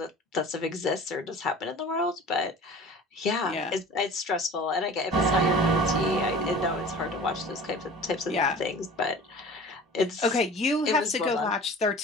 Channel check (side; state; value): both; normal; correlation 0.41